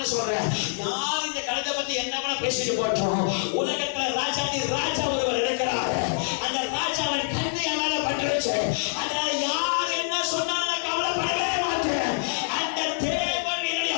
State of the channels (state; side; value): silent; right; 61 dB below the other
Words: சொல்றேன், யார் இந்த கலத்தை பத்தி என்ன பேசிட்டு போட்டோம். உலகத்துல ராஜா ஒருவர் இருக்கிறார். அந்த ராஜாவின் கண்ணியால பட்டுருச்சு. அதனால யார் என்ன சொன்னாலும் கவலைப்படவே மாட்டேன். அந்த தேவன் என்னுடைய